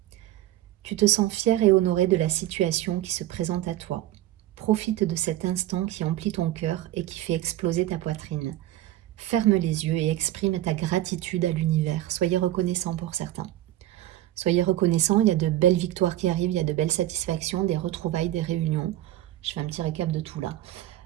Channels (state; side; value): quieter; left; 14.3 dB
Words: Tu te sens fier et honoré de la situation qui se présente à toi. Profite de cet instant qui emplit ton cœur et qui fait exploser ta poitrine. Ferme les yeux et exprime ta gratitude à l'univers. Soyez reconnaissant pour certains. Soyez reconnaissant, il y a de belles victoires qui arrivent, il y a de belles satisfactions, des retrouvailles, des réunions. Je fais un petit récap de tout là.